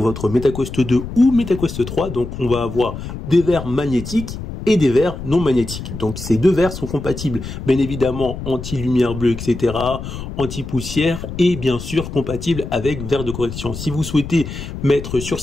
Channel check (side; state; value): left; noise; rumble, 9 dB below the sound